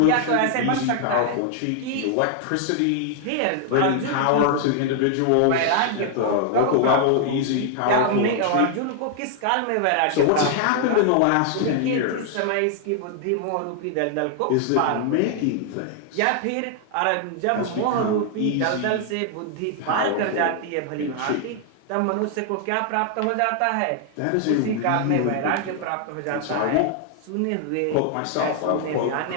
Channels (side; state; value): both; different; correlation 0.00